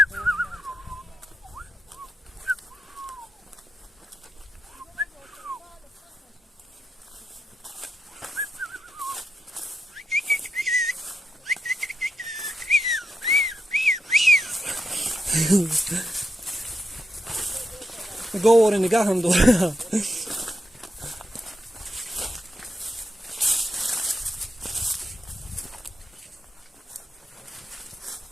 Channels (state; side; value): normal; both; correlation 0.86